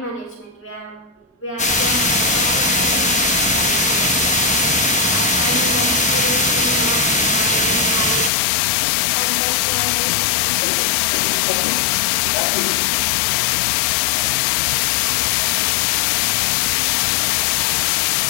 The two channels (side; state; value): right; drops out; at 8.3 s